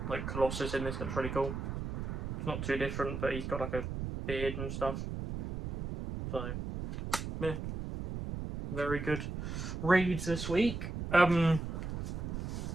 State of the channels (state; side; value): noise; right; rumble, 5 dB below the sound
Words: like Colossus in this looks really cool. It's not too different, but he's got like a beard and stuff. So yeah, very good reads this week.